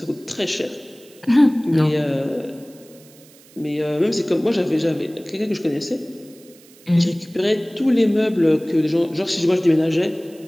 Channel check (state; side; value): noise; right; hiss, 26 dB below the sound